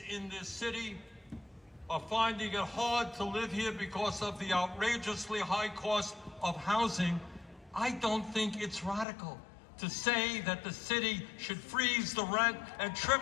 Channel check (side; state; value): right; drops out; at 9.1 s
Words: in this city are finding it hard to live here because of the outrageously high cost of housing, I don't think it's radical to say that the city should freeze the rent and